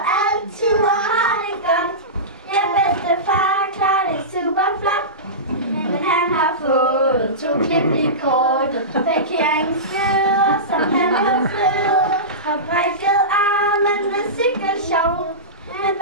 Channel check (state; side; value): normal; both; correlation -0.20